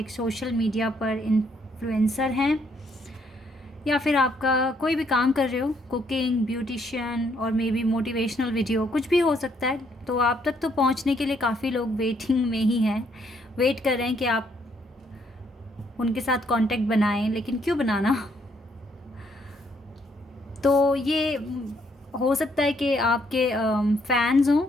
सोशल मीडिया पर इन्फ्लुएंसर हैं या फिर आपका कोई भी काम कर रहे हो, कुकिंग, ब्यूटिशियन और मे बी मोटिवेशनल वीडियो, कुछ भी हो सकता है, तो आप तक तो पहुंचने के लिए काफ़ी लोग वेटिंग में ही हैं, वेट कर रहे हैं कि आप उनके साथ कांटेक्ट बनाएं। लेकिन क्यों बनाना? तो ये हो सकता है कि आपके फैंस हों,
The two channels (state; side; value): normal; both; correlation 0.70